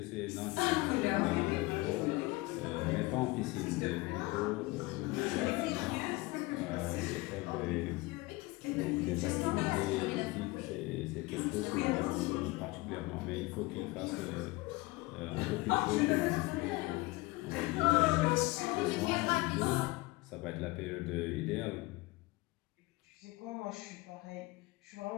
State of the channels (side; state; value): right; quieter; 22.2 dB